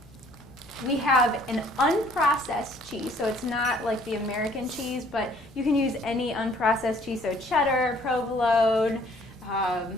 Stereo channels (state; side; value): normal; both; correlation 0.59